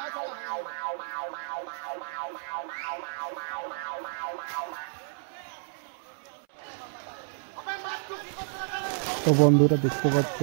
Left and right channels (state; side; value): silent; left; 58 dB below the other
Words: তো বন্ধুরা দেখতে পাচ্ছ